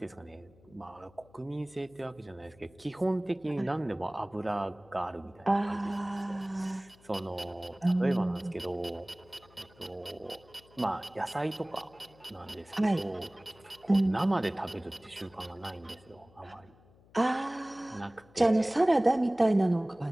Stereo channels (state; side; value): noise; left; hum, 27 dB below the sound